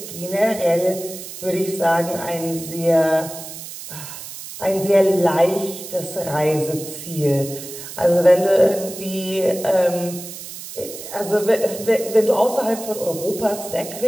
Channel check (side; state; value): right; noise; hiss, 12 dB below the sound